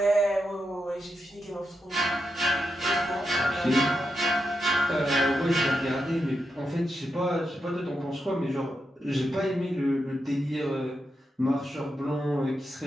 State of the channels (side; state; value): both; normal; correlation 0.86